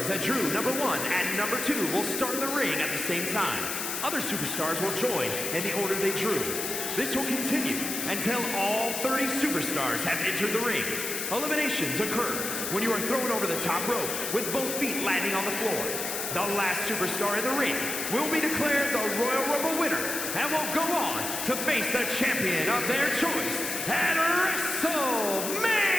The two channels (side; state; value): left; noise; hiss, 3 dB below the sound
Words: that drew number 1 and number 2 will start in the ring at the same time. Other superstars will join in the order they drew. This will continue until all 30 superstars have entered the ring. Eliminations occur when you are thrown over the top rope with both feet landing on the floor. The last superstar in the ring will be declared the Royal Rumble winner and will go on to face the champion of their choice at WrestleMania!